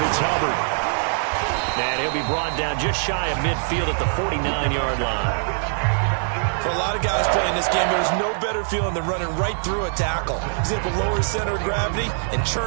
it's Hubbard. And he'll be brought down just shy of midfield at the 49-yard line. For a lot of guys playing this game, there's no better feeling than running right through a tackle. He's able to lower his center of gravity and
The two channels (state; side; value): silent; left; digital silence